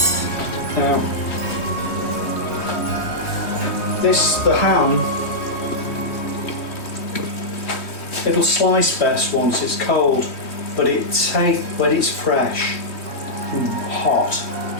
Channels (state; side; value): late; right; 3.1 ms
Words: Now, the ham, it'll slice best once it's cold, but when it's fresh and hot,